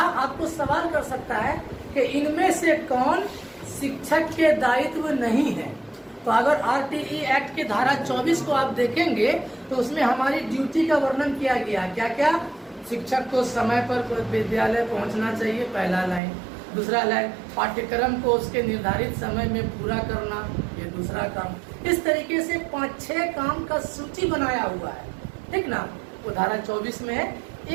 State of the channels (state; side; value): drops out; left; at 16.2 s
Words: सवाल कर सकता है कि इनमें से कौन शिक्षक के दायित्व नहीं है। तो अगर आरटीई एक्ट के धारा 24 को आप देखेंगे तो उसमें हमारी ड्यूटी का वर्णन किया गया है। क्या क्या? शिक्षक को समय पर विद्यालय पहुंचना चाहिए, पहला लाइन। दूसरा लाइन, पाठ्यक्रम को उसके निर्धारित समय में पूरा करना, ये दूसरा काम। इस तरीके से 5-6 काम का सूची बनाया हुआ है, ठीक ना, वो धारा 24 में है।